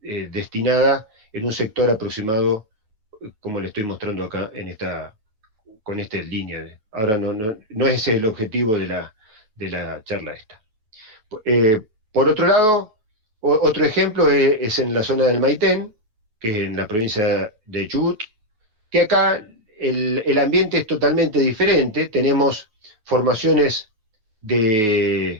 en un sector aproximado, como le estoy mostrando acá con esta línea. Ahora no es ese el objetivo de la charla esta. Por otro lado, otro ejemplo es en la zona del Maitén, que es en la provincia de Chubut, que acá el ambiente es totalmente diferente. Tenemos formaciones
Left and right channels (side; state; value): left; late; 9.3 ms